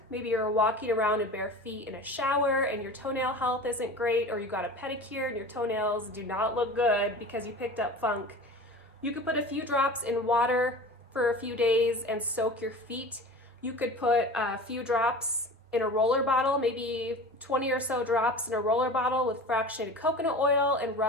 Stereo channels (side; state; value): both; normal; correlation 0.36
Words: Maybe you're walking around in bare feet in a shower and your toenail health isn't great, or you got a pedicure and your toenails do not look good because you picked up funk. You could put a few drops in water for a few days and soak your feet. You could put a few drops in a roller bottle, maybe 20 or so drops in a roller bottle with fractionated coconut oil, and